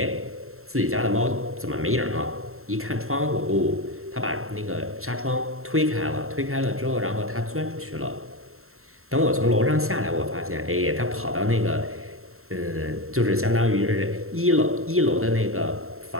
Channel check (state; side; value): late; left; 0.62 ms